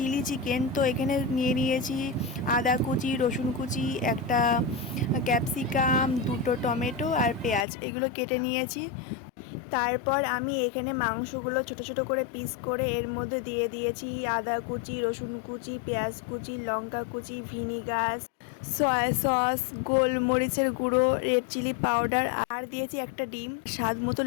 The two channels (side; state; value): right; drops out; at 7.7 s